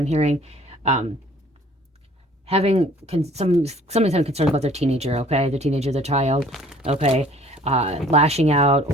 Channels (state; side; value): normal; both; correlation 0.54